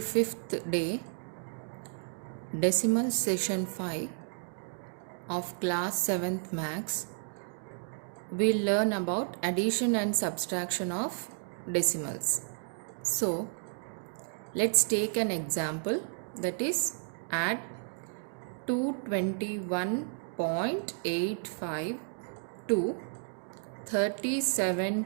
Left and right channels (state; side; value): silent; left; 56 dB below the other